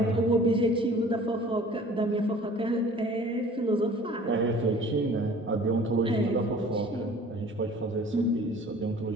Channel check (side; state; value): both; normal; correlation 0.48